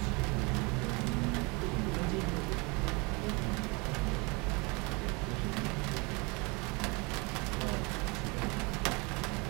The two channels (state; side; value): quieter; left; 28.2 dB